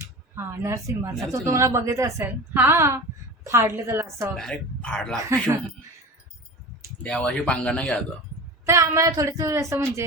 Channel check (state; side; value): normal; both; correlation 0.32